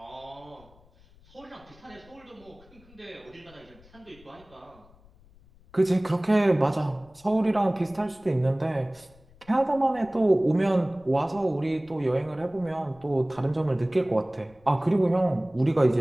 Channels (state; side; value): noise; left; rumble, 27 dB below the sound